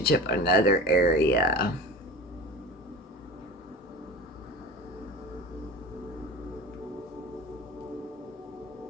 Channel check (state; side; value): normal; both; correlation 0.34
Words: or another area.